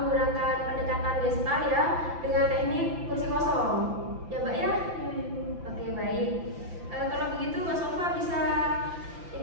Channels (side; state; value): left; late; 5.9 ms